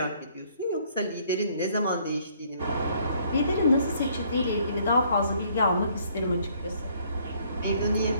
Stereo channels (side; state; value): both; inverted; correlation -0.63